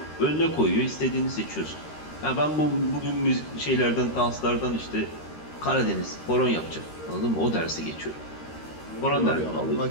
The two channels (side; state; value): right; late; 13 ms